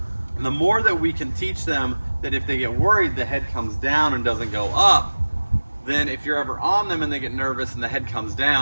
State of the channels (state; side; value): inverted; both; correlation -1.00